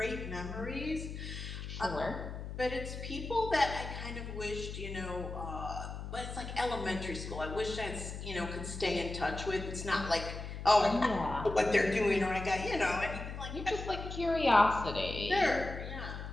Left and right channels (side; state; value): left; noise; hum, 8 dB below the sound